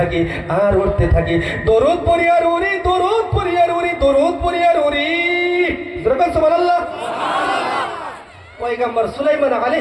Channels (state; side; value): identical; both; correlation 1.00